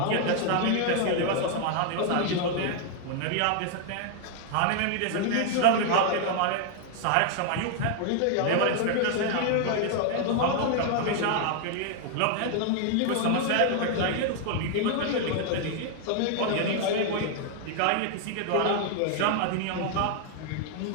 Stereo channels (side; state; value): both; different; correlation 0.00